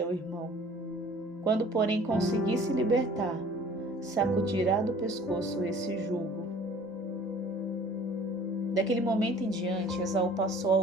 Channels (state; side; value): normal; both; correlation 0.50